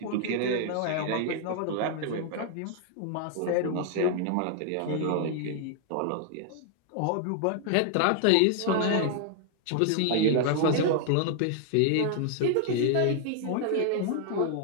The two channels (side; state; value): both; different; correlation 0.00